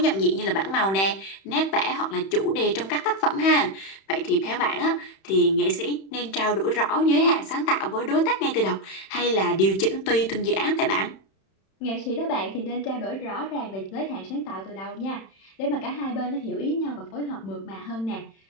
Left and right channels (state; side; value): late; right; 31 ms